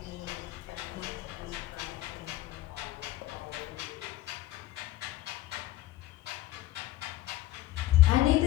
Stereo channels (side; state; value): right; quieter; 15.4 dB